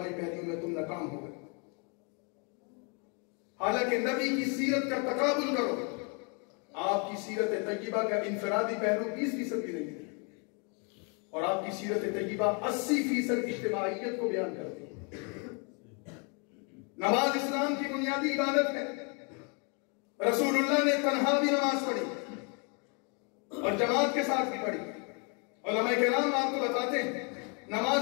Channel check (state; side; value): quieter; right; 35.9 dB